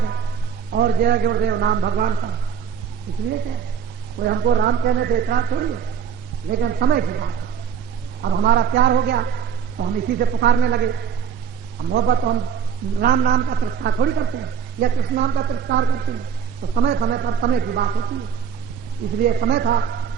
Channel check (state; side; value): quieter; left; 7.4 dB